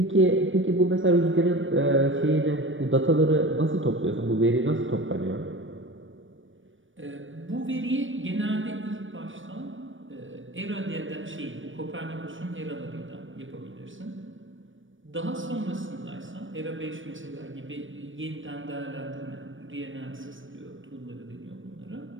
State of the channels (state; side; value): late; left; 0.57 ms